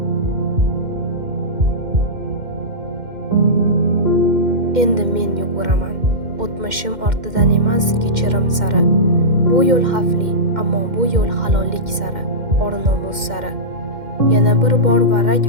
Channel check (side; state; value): left; late; 2.1 ms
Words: Endi men yuguraman. O'tmishim ortidan emas, kechirim sari. Bu yo'l xavfli, ammo bu yo'l halollik sari, or-nomus sari. Yana bir bor varrak